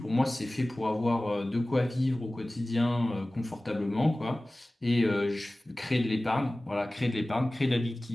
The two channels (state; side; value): normal; both; correlation 0.98